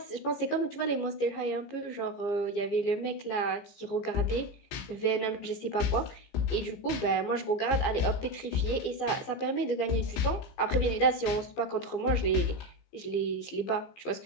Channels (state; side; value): late; right; 15 ms